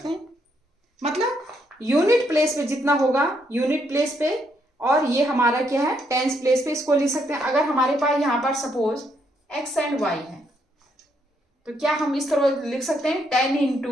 हैं। मतलब यूनिट प्लेस पे जितना होगा यूनिट प्लेस पे, और ये हमारा क्या है टेंस प्लेस पे, इसको लिख सकते हैं। अगर हमारे पास यहाँ पर सपोज x एंड y है तो क्या हम इस तरह लिख सकते हैं 10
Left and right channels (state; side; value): normal; both; correlation 0.75